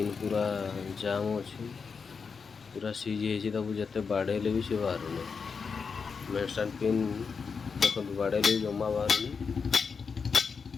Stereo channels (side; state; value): right; quieter; 5.5 dB